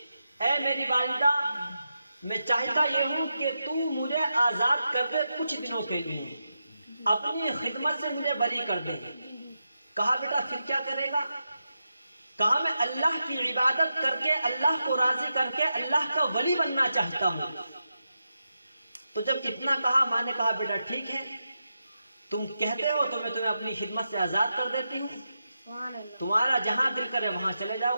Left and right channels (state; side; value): inverted; both; correlation -0.88